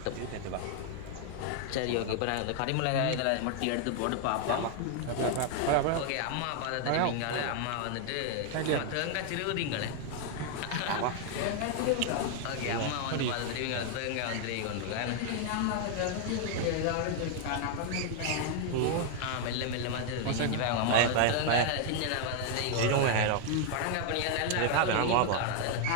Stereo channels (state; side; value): different; both; correlation 0.00